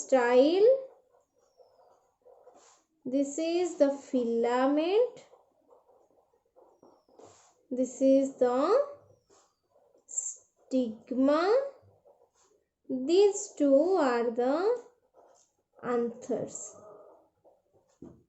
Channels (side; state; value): both; identical; correlation 1.00